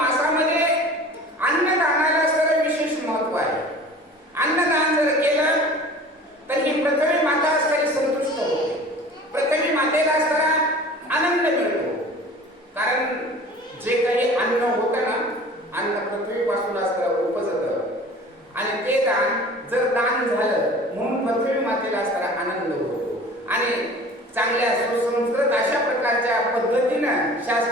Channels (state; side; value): normal; both; correlation 0.43